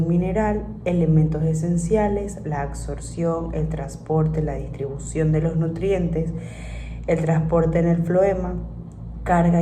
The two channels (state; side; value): identical; both; correlation 1.00